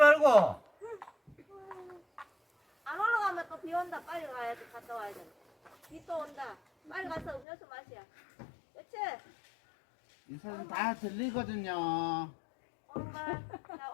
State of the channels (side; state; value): right; drops out; at 7.5 s